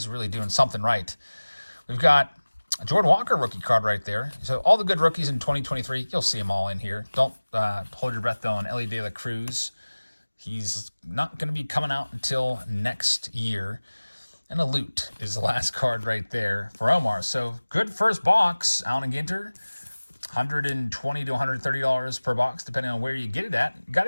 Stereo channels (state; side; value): inverted; both; correlation -1.00